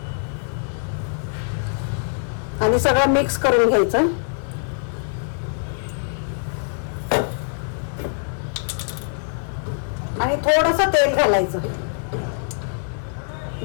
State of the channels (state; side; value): silent; right; 62 dB below the other